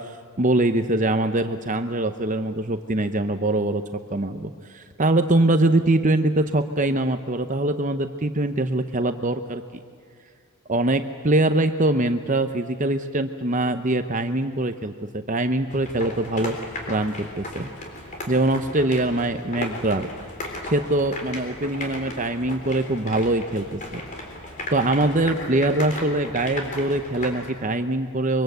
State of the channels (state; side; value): normal; both; correlation 0.43